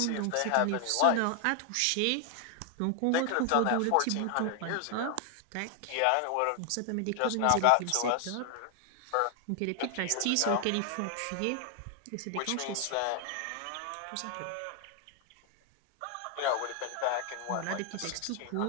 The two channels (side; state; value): both; different; correlation 0.00